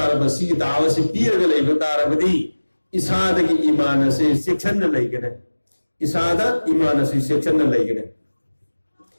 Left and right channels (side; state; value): both; inverted; correlation -1.00